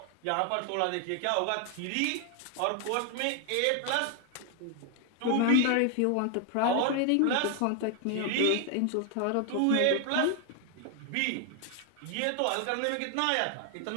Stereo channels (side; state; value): both; different; correlation 0.00